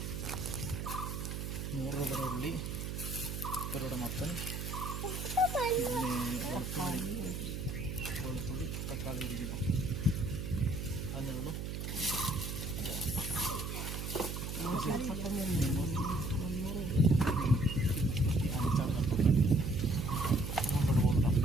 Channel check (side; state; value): right; noise; hum, 5 dB below the sound